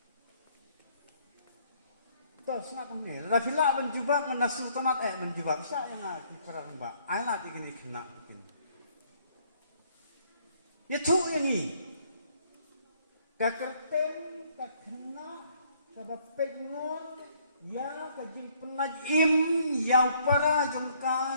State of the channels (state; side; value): inverted; both; correlation -0.65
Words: to sangat ni la fila menjubak menasu tanat menjubak sa yang ati perang ba ai la tigini kena kin ya tu yang ni ka kerten ka kena ka bapengon ya kajing penajim yang para